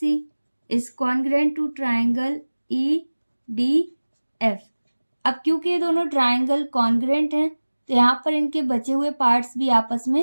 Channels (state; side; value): inverted; both; correlation -1.00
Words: is congruent to triangle EDF। अब क्योंकि ये दोनों ट्राइंगल कॉन्ग्रेंट हैं तो यहाँ पर इनके बचे हुए पार्ट्स भी आपस